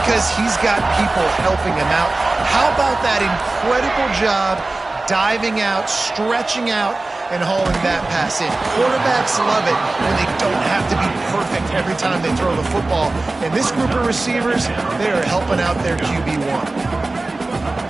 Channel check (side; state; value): left; quieter; 3.1 dB